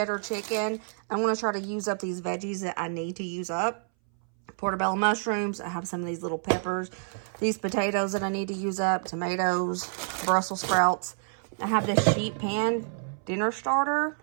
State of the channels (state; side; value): silent; left; 59 dB below the other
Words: chicken. I'm going to try to use up these veggies that I need to use up. Portobello mushrooms. I have some of these little peppers. These potatoes that I need to use up. Tomatoes. Brussels sprouts. I have this sheet pan dinner starter.